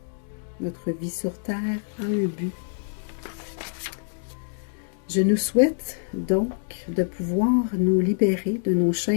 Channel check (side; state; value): right; silent; digital silence